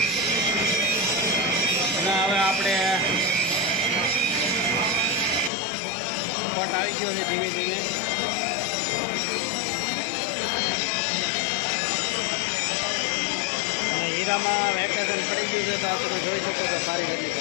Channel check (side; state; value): right; drops out; at 5.5 s